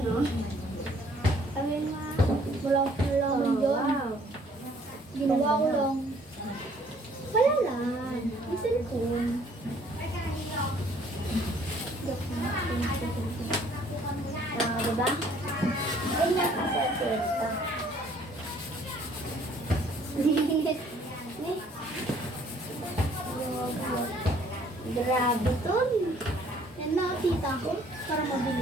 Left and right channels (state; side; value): normal; both; correlation 0.60